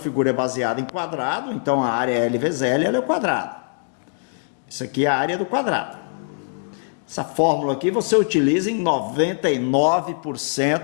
é baseada em quadrado, então a área L vezes L, ela é o quadrado. Isso aqui é a área do quadrado. Essa fórmula aqui você utiliza em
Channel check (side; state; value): right; silent; digital silence